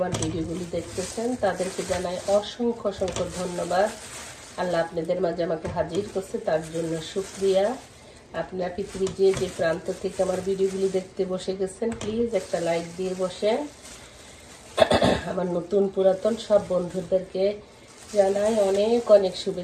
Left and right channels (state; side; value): identical; both; correlation 1.00